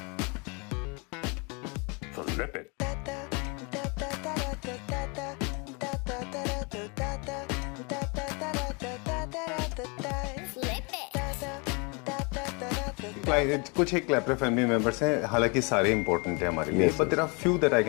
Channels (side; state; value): right; quieter; 31.9 dB